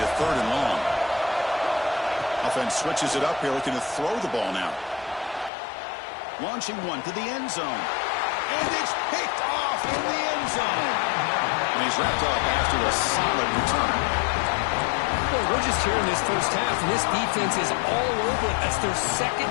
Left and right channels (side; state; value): right; drops out; at 5.5 s